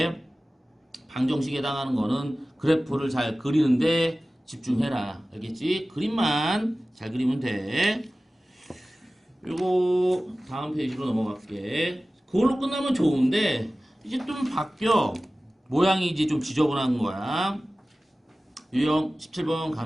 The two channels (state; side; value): normal; both; correlation 0.97